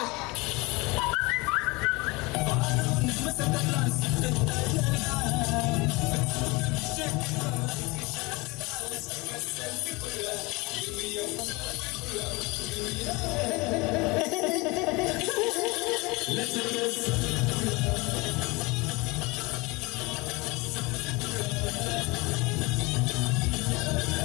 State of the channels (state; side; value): quieter; right; 24.9 dB